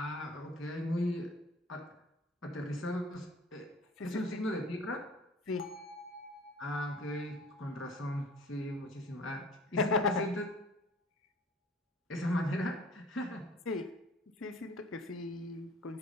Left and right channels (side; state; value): both; normal; correlation 0.49